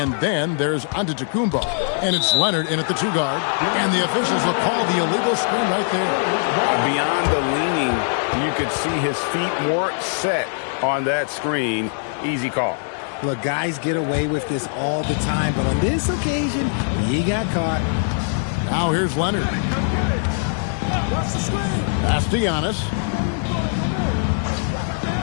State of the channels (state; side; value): silent; right; 64 dB below the other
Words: then there's Antetokounmpo. And it's Leonard in at the 2-guard. And the officials will call the illegal screen right there. Beyond the leaning, you could see his feet weren't set on that screen. Easy call. Look, guys get away with this all the time, but on this occasion, he got caught. Now here's Leonard. Pass to Giannis.